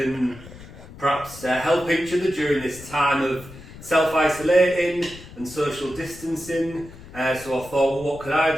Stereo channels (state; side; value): noise; left; rumble, 17 dB below the sound